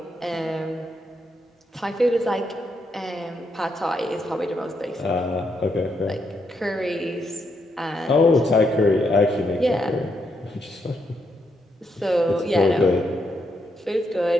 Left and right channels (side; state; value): both; normal; correlation 0.79